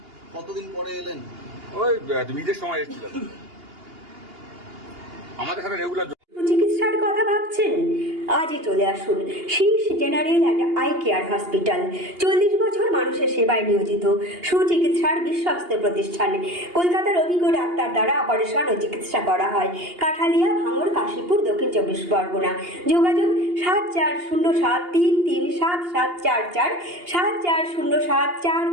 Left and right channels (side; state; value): left; late; 2.8 ms